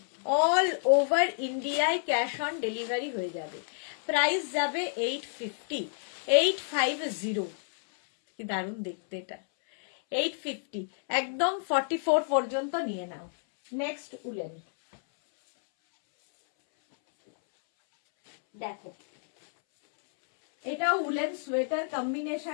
অল ওভার ইন্ডিয়ায় ক্যাশ অন ডেলিভারি হয়ে যাবে। প্রাইস যাবে 850। 850, কি দারুণ দেখতে এটা। 850, একদম 44 পর্যন্ত নিয়ে নাও। নেক্সট উলেন দেখো, এটা উলেন সোয়েটার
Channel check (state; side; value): silent; right; 58 dB below the other